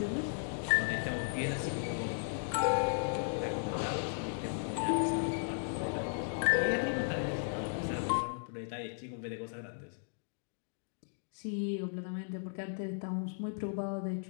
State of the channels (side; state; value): right; silent; digital silence